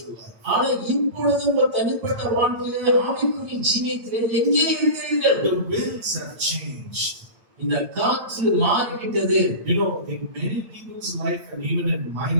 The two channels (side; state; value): left; late; 8.8 ms